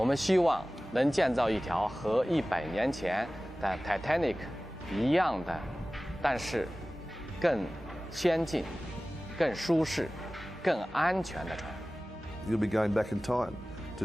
们希望能建造一条和100年前的 Titanic 一样的，但是更先进、更舒适、更安全的船。You'll be going back in time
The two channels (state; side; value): normal; both; correlation 0.97